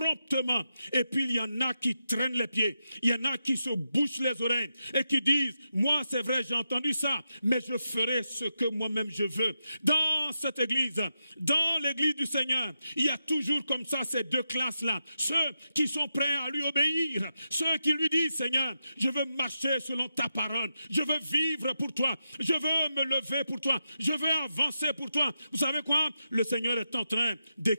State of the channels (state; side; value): inverted; both; correlation -0.88